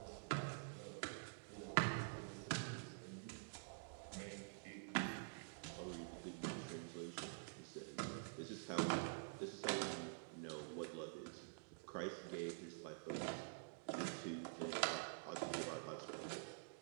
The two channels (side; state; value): left; silent; digital silence